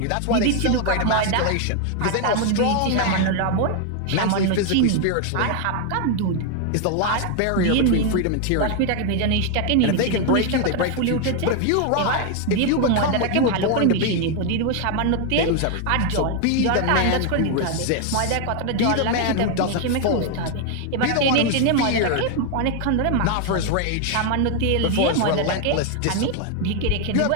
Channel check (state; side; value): different; both; correlation 0.01